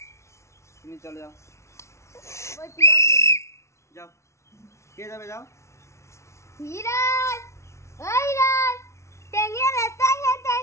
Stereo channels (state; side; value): late; right; 0.13 ms